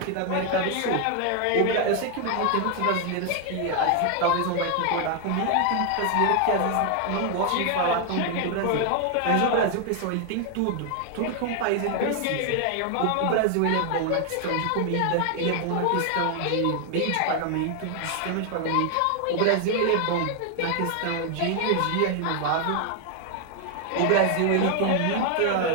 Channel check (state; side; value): different; both; correlation 0.00